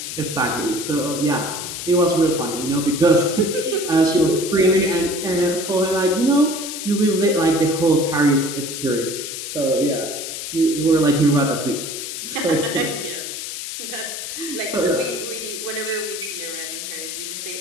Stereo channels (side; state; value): left; noise; hiss, 7 dB below the sound